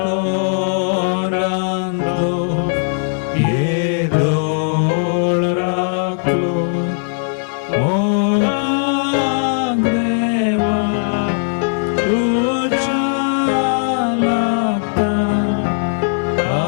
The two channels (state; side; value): silent; right; digital silence